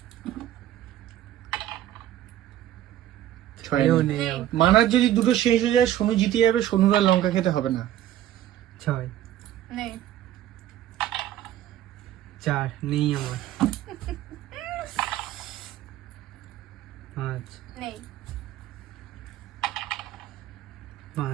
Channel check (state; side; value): quieter; left; 12.4 dB